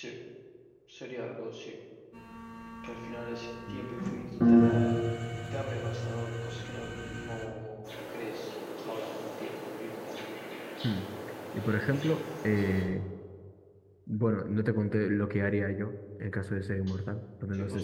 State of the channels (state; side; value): identical; both; correlation 1.00